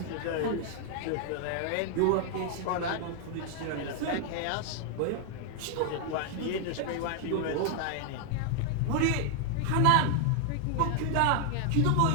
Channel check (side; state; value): both; different; correlation 0.00